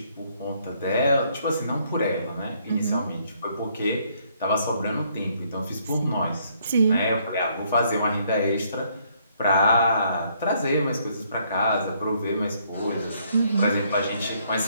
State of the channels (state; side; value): inverted; both; correlation -0.68